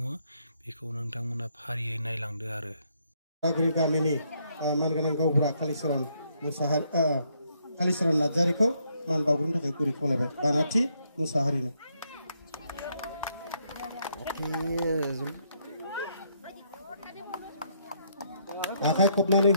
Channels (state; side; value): inverted; both; correlation -0.73